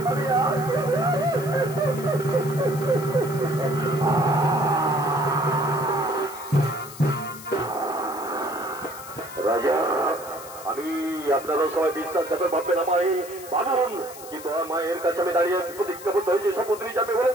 রাজা, আমি আপনারা সবাই বিশ্বাসঘাতক ভাববেন আমায়, ভাবুন, কিন্তু আমার মায়ের কাছে আমি দাঁড়িয়ে প্রতিজ্ঞাবদ্ধ হয়েছি শপথ নিয়ে যাবে বলেন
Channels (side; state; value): left; noise; hiss, 16 dB below the sound